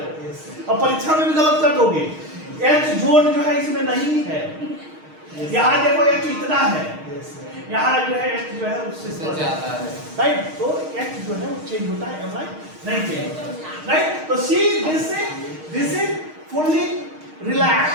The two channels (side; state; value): left; late; 6.4 ms